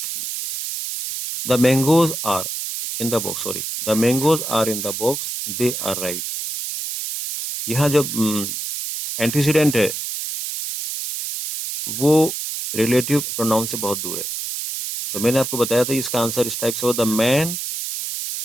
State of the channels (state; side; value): noise; right; hiss, 5 dB below the sound